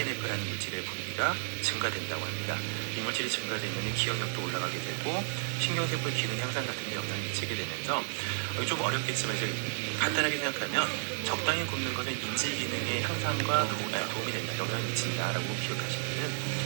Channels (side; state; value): left; silent; digital silence